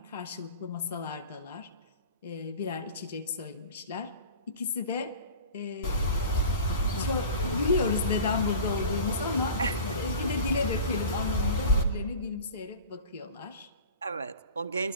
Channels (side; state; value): both; inverted; correlation -0.37